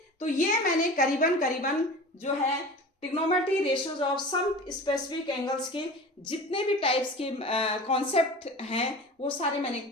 तो ये मैंने करीबन जो है trigonometry ratios of some specific angles के जितने भी टाइप्स के कॉन्सेप्ट हैं वो सारे मैंने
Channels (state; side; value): normal; both; correlation 0.36